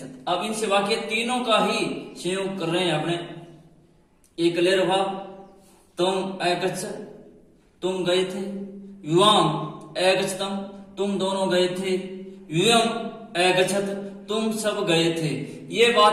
अब इनसे वाक्य तीनों का ही संयोग कर रहे हैं अपने। एक क्लियर भाव, तुम ए गच्छ, तुम गए थे। युवाम ए गच्छतम, तुम दोनों गए थे। युयम ए गच्छत, तुम सब गए थे। ये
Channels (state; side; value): identical; both; correlation 1.00